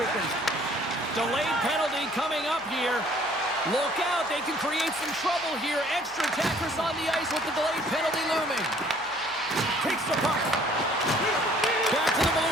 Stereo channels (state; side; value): noise; right; hum, 28 dB below the sound